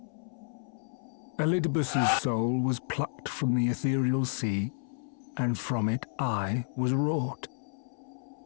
Elidibus's soul was plucked from the ethereal sea, and from it I was wrought.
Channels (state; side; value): silent; right; 57 dB below the other